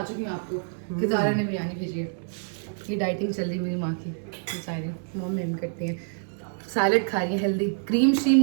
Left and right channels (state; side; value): silent; left; digital silence